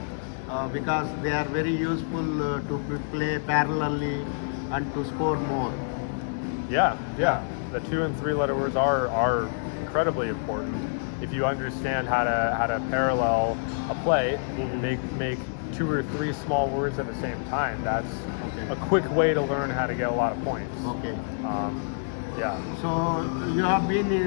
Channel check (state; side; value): silent; right; digital silence